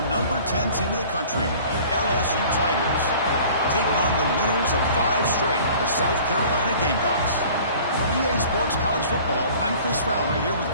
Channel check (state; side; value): inverted; both; correlation -0.48